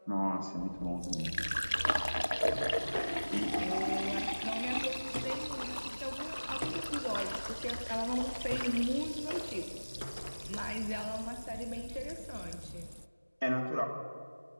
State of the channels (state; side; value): inverted; both; correlation -1.00